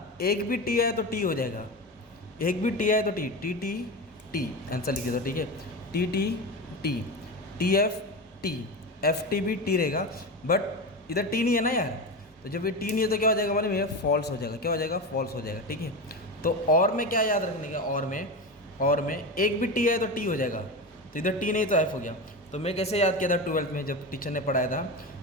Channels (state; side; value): normal; both; correlation 0.22